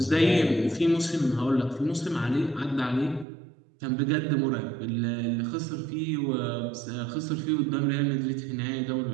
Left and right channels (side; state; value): left; drops out; at 3.2 s